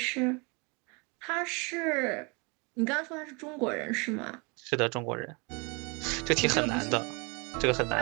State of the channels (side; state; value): left; quieter; 30.1 dB